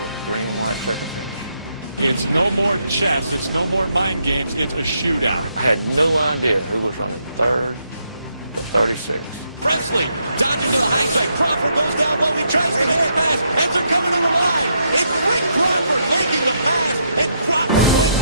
a green and white checker finish. It's no more chess. It's no more mind games. It's a shootout. I had no idea who was running 3rd to 36. Presley dodging to the high side. Crawford goes down low. He tries to make a pass as they're coming to the line. It's Rick Crawford making the pass, and Crawford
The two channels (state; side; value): inverted; both; correlation -0.77